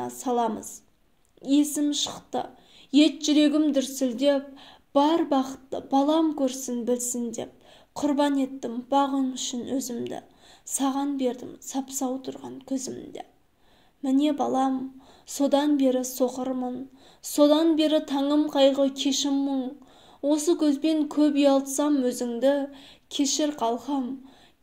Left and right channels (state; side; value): identical; both; correlation 1.00